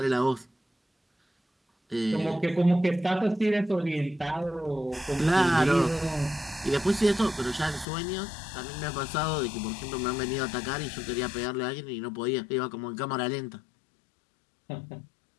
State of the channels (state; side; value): drops out; right; at 7.9 s